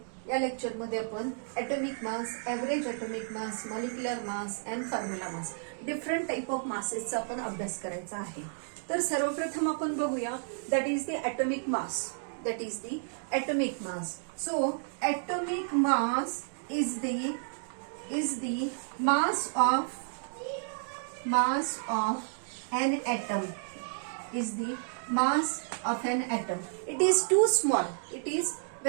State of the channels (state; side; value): silent; left; digital silence